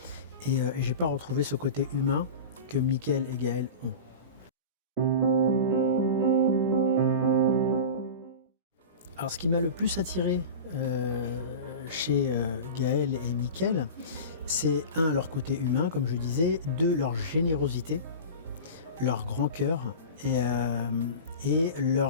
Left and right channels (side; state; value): both; inverted; correlation -0.30